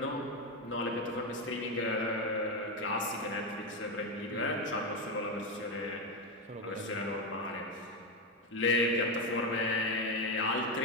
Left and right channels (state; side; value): normal; both; correlation 0.10